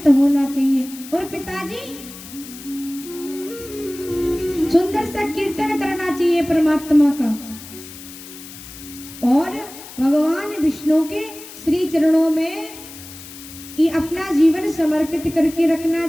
होना चाहिए। और पिताजी सुंदर सा कीर्तन करना चाहिए परमात्मा का, और भगवान विष्णु के श्री चरणों में ये अपना जीवन समर्पित करके रखना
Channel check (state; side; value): noise; left; hiss, 15 dB below the sound